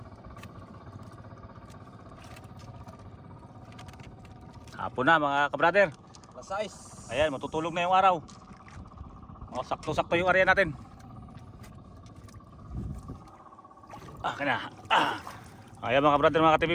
Hapon na mga kabrader. Lasais. Ayan, matutulog na yung araw. O, sakto-sakto yung area natin. Kana. Ayan mga kabrader, mga ka-TV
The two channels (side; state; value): both; identical; correlation 1.00